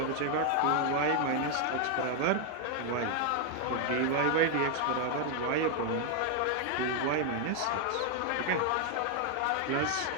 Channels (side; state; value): both; different; correlation 0.01